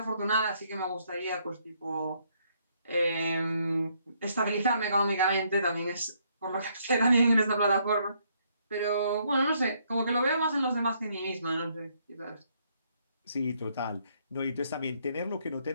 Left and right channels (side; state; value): both; inverted; correlation -0.70